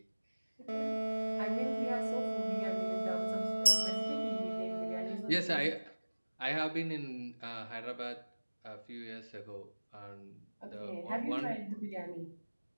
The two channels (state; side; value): inverted; both; correlation -1.00